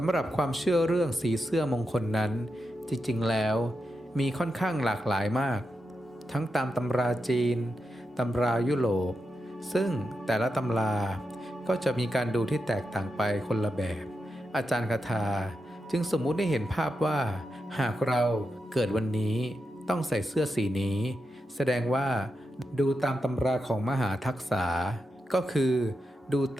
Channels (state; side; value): normal; both; correlation 0.88